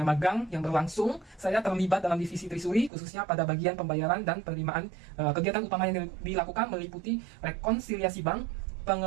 magang yang berlangsung, saya terlibat dalam divisi Trisuri khususnya pada bagian pembayaran dan penerimaan. Kegiatan utama yang dilakukan meliputi rekonsiliasi bank,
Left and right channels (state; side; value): drops out; left; at 2.9 s